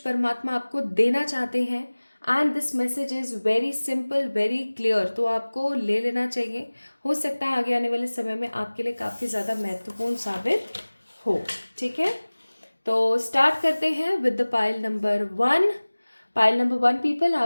परमात्मा आपको देना चाहते हैं। And this message is very simple, very clear, तो आपको ले लेना चाहिए। हो सकता है आगे आने वाले समय में आपके लिए काफ़ी ज़्यादा महत्वपूर्ण साबित हो। ठीक है, तो स्टार्ट करते हैं with the pile number 1। Pile number 1 people,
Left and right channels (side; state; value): both; inverted; correlation -1.00